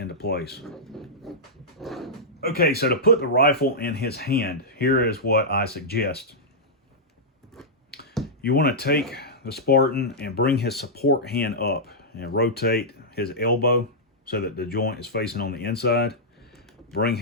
place. Okay, so to put the rifle in his hand, here is what I suggest. You want to take the Spartan and bring his support hand up and rotate his elbow so that the joint is facing on the inside. Bring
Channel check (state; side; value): normal; both; correlation -0.11